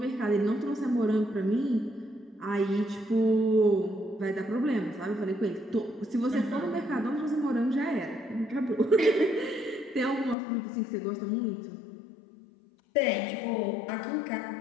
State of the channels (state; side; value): drops out; right; at 10.4 s